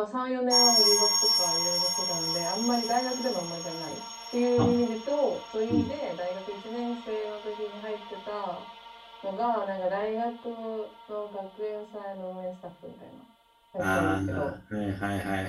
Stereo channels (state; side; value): identical; both; correlation 1.00